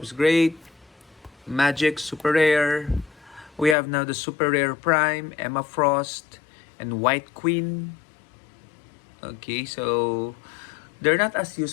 is great. Magic, super rare. We have now the super rare Prime, Emma Frost, and White Queen. Okay, so they're not as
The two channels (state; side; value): drops out; right; at 3.8 s